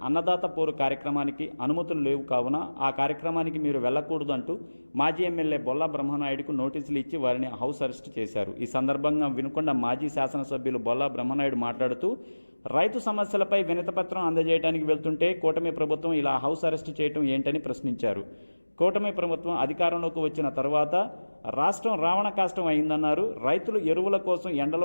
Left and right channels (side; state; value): both; inverted; correlation -1.00